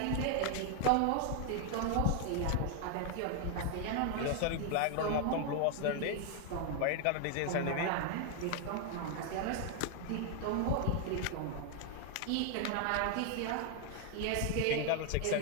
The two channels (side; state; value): both; different; correlation 0.00